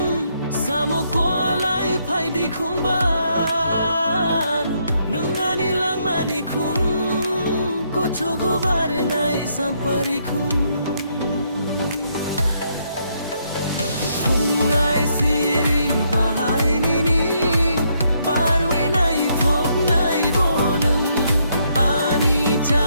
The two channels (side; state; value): both; inverted; correlation -0.74